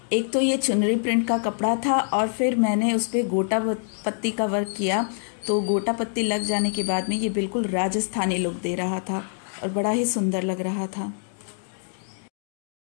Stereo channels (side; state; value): right; silent; digital silence